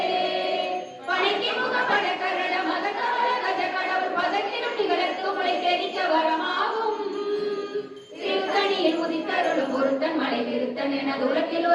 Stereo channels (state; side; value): identical; both; correlation 1.00